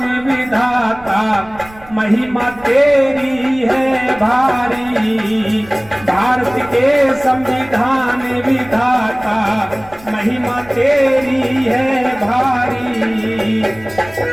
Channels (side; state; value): right; noise; rumble, 22 dB below the sound